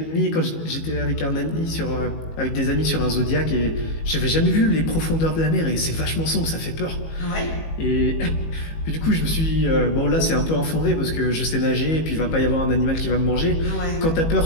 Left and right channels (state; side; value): late; right; 19 ms